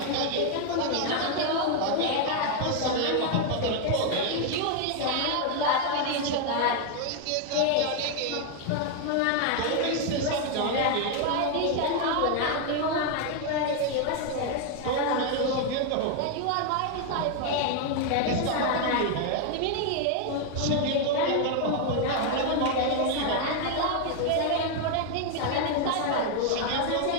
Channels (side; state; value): both; different; correlation 0.01